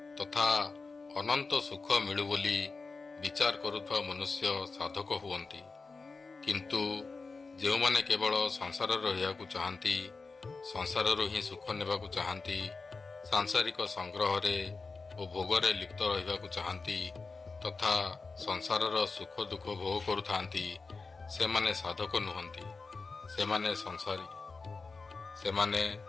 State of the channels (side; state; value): right; quieter; 4.2 dB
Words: ତଥା ଅନନ୍ତ ସୁଖ ମିଳୁ ବୋଲି ବିଚାର କରୁଥିବା ମନୁଷ୍ୟ ସାଧକ ହୁଅନ୍ତି। କିନ୍ତୁ ଯେଉଁମାନେ କେବଳ ସଂସାରରେ ରହିବାକୁ ଚାହାନ୍ତି, ସଂସାରରୁ ହିଁ ସୁଖ ନେବାକୁ ଚାହାନ୍ତି, ସାଂସାରିକ ସଂଗ୍ରହରେ ଓ ଭୋଗରେ ଲିପ୍ତ ରହିବାକୁ ଚାହାନ୍ତି ତଥା ସଂସାରର ସୁଖ ଦୁଃଖ ଭୋଗ କରୁଥାନ୍ତି, ସେମାନେ ସାଧକ ନୁହନ୍ତି, ସେମାନେ ସଂସାରୀ। ସେମାନେ